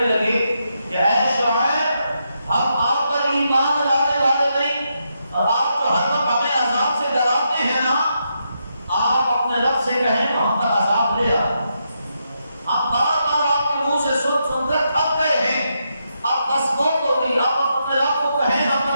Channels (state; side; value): inverted; both; correlation -0.82